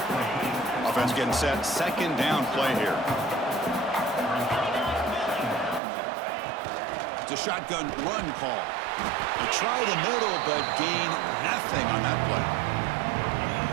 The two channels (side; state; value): left; drops out; at 5.8 s